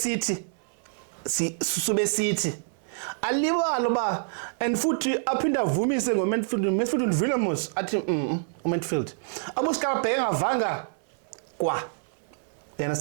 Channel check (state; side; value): silent; left; 60 dB below the other